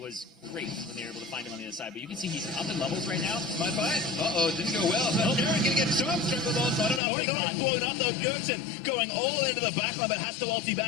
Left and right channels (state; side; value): drops out; right; at 7.0 s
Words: was great when they were able to find him on the other side. But you can see he's up in levels right now. My fight. Didn't go well. So Aaron gonna get jump strangled on. So I don't know. He's blown up though. 𝐿CS going all into the back line, but has to ulti